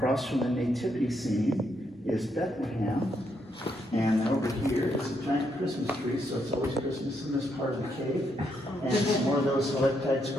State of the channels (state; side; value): normal; both; correlation 0.77